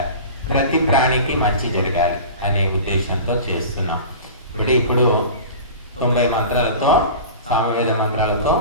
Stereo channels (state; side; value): inverted; both; correlation -0.35